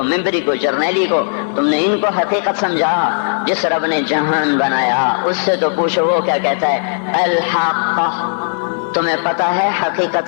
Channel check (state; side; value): silent; right; 69 dB below the other